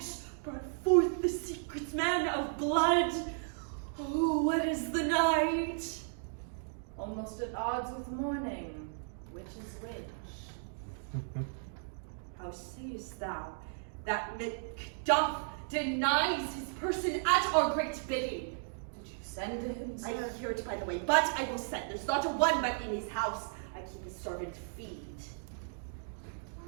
brought forth the secret man of blood. Oh, what is the night? Almost at odds with morning, which is which? How sayest thou that Macduff denies his person at our great bidding? Did you send to him, I sir? hear it, by the way, but I will send. There's not a one but in his house. I keep his servant feed.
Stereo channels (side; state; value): left; silent; digital silence